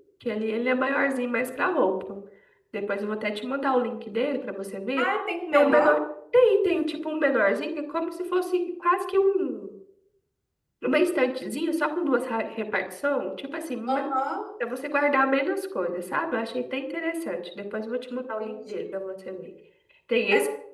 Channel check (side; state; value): both; identical; correlation 1.00